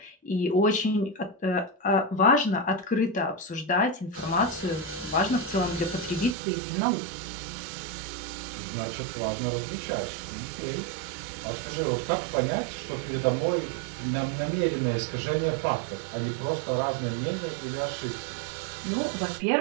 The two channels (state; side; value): drops out; left; at 6.4 s